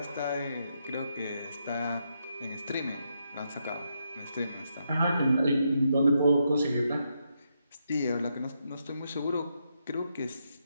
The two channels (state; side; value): inverted; both; correlation -0.81